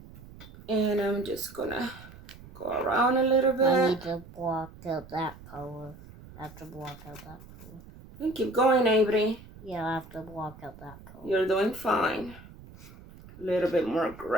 And I'm just gonna go around a little bit. I need to block out that color. I have to block out that color. And keep going, Avery. Yeah, I have to block out that color. You're doing fine. A little bit more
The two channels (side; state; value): right; noise; rumble, 19 dB below the sound